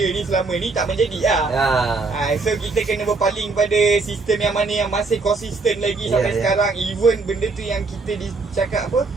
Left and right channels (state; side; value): quieter; left; 3.9 dB